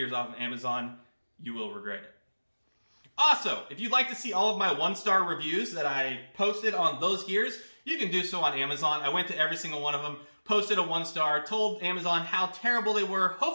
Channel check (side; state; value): both; inverted; correlation -1.00